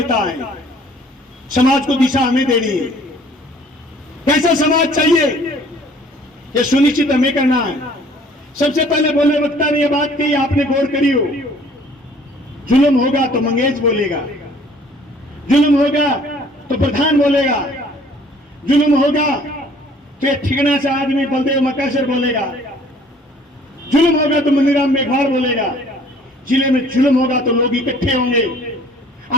हैं। समाज को दिशा हमें देनी है। कैसा समाज चाहिए ये सुनिश्चित हमें करना है। सबसे पहले बोले वक्ता ने यह बात कही, आपने गौर करी हो, जुल्म होगा तो मंगेश बोलेगा, जुल्म होगा तो प्रधान बोलेगा, जुल्म होगा तो ये ठिकाना से आदमी बलदेव मकासर बोलेगा, जुल्म होगा तो मनीराम मेघवाल बोलेगा। जिले में जुल्म होगा तो लोग इकट्ठे होंगे,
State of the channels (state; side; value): normal; both; correlation 0.55